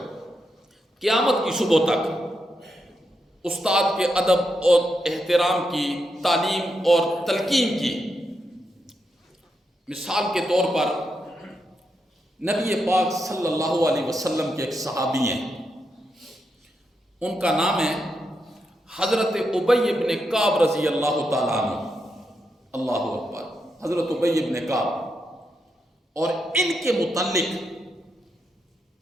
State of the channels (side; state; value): both; normal; correlation 0.84